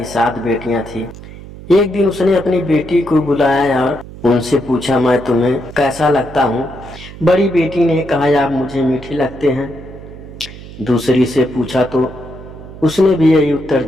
7 बेटियां थी। एक दिन उसने अपनी बेटी को बुलाया और उनसे पूछा, मैं तुम्हें कैसा लगता हूँ? बड़ी बेटी ने कहा, आप मुझे मीठे लगते हैं। दूसरी से पूछा तो उसने भी यही उत्तर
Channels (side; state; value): right; noise; hum, 15 dB below the sound